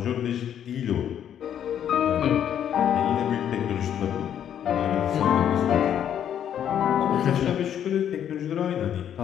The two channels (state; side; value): quieter; right; 9.6 dB